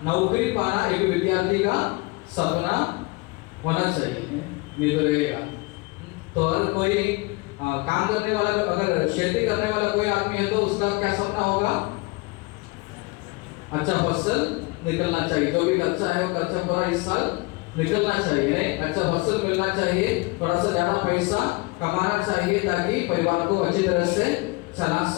नौकरी पाना एक विद्यार्थी का सपना होना चाहिए, नहीं तो रहेगा। तो अगर कोई काम करने वाला, अगर खेती करने वाला कोई आदमी है तो उसका क्या सपना होगा? अच्छा फसल निकलना चाहिए, जो भी खर्चा है वो खर्चा पूरा इस साल निकलना चाहिए, अच्छा फसल मिलना चाहिए, थोड़ा सा ज्यादा पैसा कमाना चाहिए ताकि परिवार को अच्छी तरह से चला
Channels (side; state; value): right; quieter; 25.0 dB